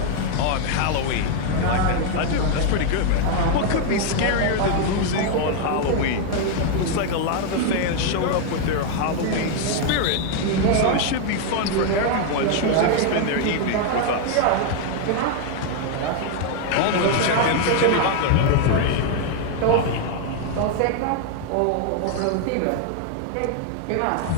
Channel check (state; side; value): different; both; correlation 0.00